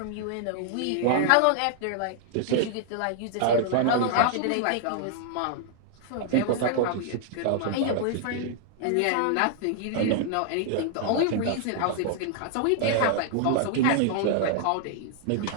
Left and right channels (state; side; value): different; both; correlation 0.00